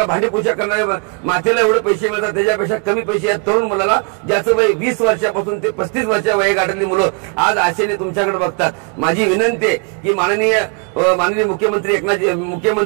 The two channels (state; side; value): quieter; left; 33.7 dB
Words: भांडी पूजा करणाऱ्या मातेला एवढे पैसे मिळतात, त्याच्यापेक्षा कमी पैसे या तरुण मुलाला ज्याचं वय 20 वर्षापासून ते 35 वर्षा वयोगटातली मुलं आज आशेने तुमच्याकडे बघतात। माझी विनंती आहे की माननीय मुख्यमंत्री